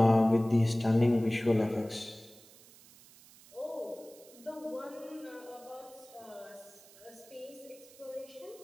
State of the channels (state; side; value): noise; right; hiss, 23 dB below the sound